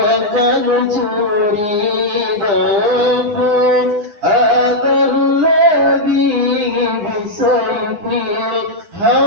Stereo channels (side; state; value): left; late; 9.9 ms